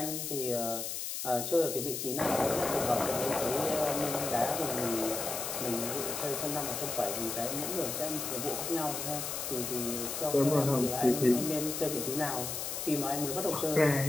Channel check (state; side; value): noise; left; hiss, 4 dB below the sound